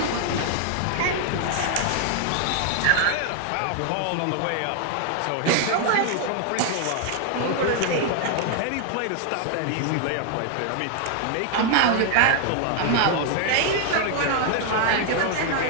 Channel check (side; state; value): both; different; correlation 0.00